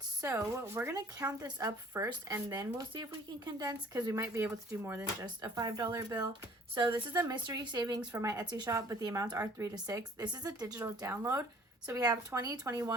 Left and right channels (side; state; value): both; normal; correlation 0.53